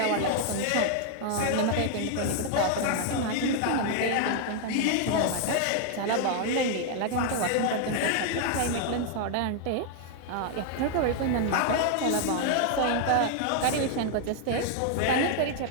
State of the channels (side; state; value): both; different; correlation 0.00